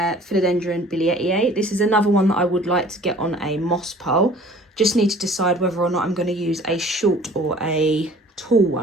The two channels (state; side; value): normal; both; correlation 0.50